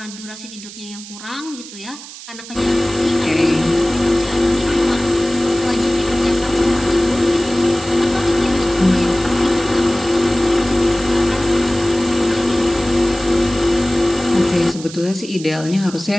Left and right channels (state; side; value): noise; right; hiss, 15 dB below the sound